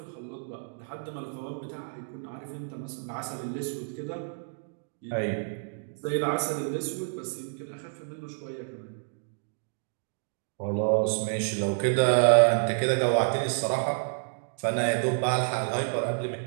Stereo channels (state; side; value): silent; left; digital silence